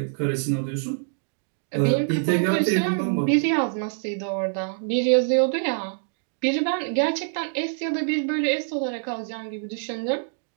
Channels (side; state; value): left; silent; digital silence